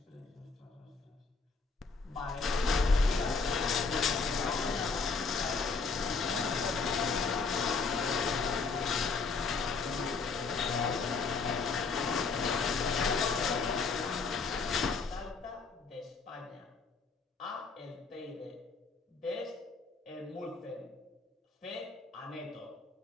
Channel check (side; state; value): right; quieter; 4.6 dB